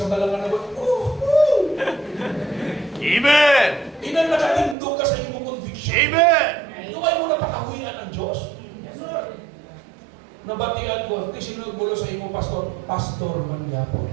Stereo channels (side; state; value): left; drops out; at 4.8 s